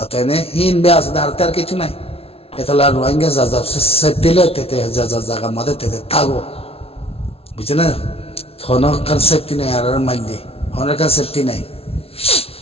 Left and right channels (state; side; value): late; right; 0.29 ms